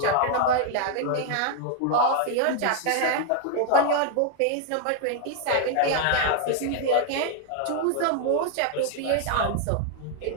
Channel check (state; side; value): different; both; correlation 0.00